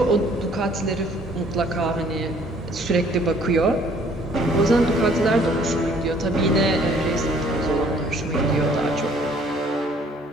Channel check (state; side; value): normal; both; correlation 0.59